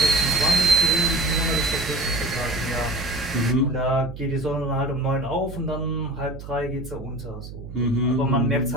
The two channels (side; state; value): right; noise; hum, 12 dB below the sound